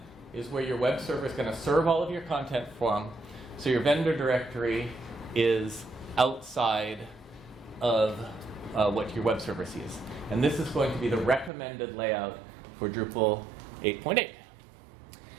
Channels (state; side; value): drops out; left; at 11.5 s